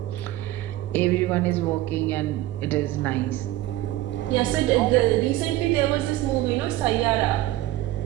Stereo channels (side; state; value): left; quieter; 15.5 dB